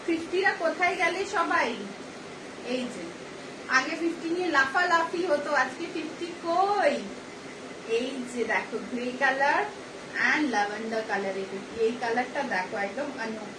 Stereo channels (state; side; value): identical; both; correlation 1.00